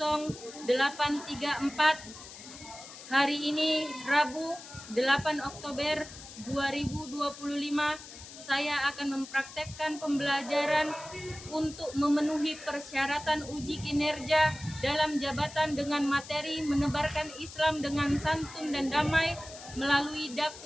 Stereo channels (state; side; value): noise; left; hiss, 15 dB below the sound